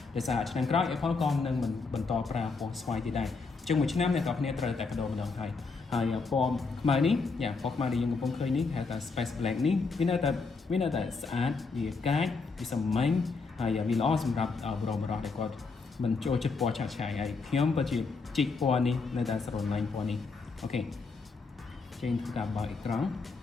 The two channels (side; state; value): right; quieter; 4.4 dB